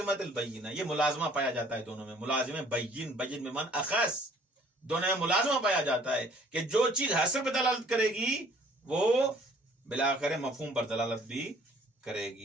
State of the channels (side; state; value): both; normal; correlation 0.57